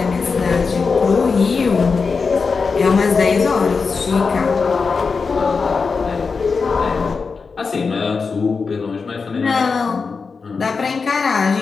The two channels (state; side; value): quieter; right; 4.9 dB